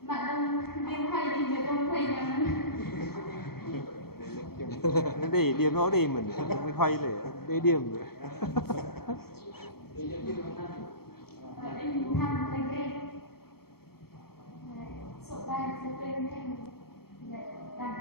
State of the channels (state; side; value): late; right; 0.95 ms